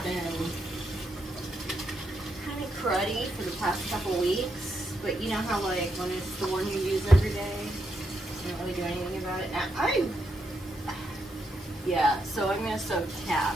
been kind of cruddy for the past couple weeks, but you know how like when it's the one you use every day, you don't really do anything about it. Now yeah, so I'm gonna soak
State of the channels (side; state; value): both; normal; correlation 0.81